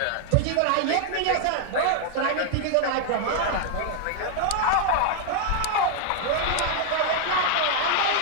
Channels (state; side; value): different; both; correlation 0.00